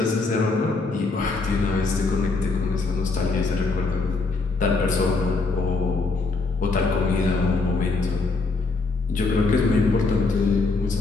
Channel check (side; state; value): right; quieter; 3.7 dB